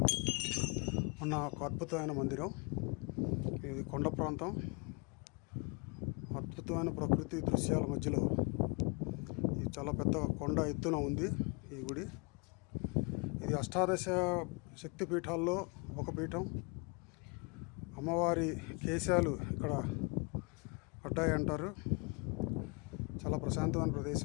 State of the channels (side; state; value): right; quieter; 32.0 dB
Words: ఉన్న ఒక అద్భుతమైన మందిరం. ఇది కొండ ప్రాంతం, అద్భుతమైన ప్రకృతి దృశ్యాల మధ్యలో ఇది చాలా పెద్ద కొండ ఎత్తున ఉంది ఈ గుడి. ఇది అష్టాదశ శక్తి పీఠాల్లో ఒక పీఠం. అమ్మవారి కేశాలు ఇక్కడ పడ్డాయి అంటారు. చాలా ప్రశాంతమైన